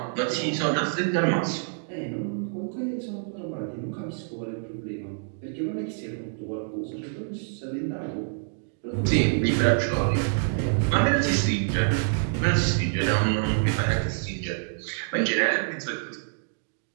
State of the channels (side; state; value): left; silent; digital silence